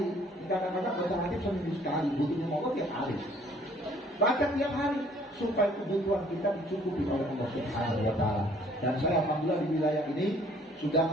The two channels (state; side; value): normal; both; correlation 0.58